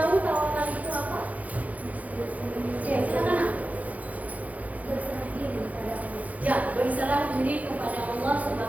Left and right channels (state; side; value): late; left; 0.073 ms